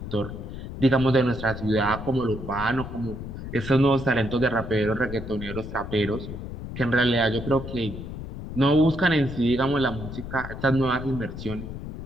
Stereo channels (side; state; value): left; noise; rumble, 9 dB below the sound